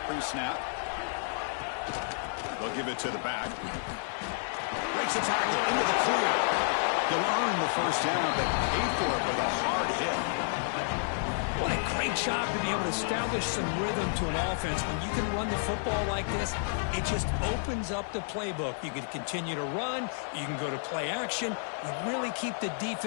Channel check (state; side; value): silent; right; digital silence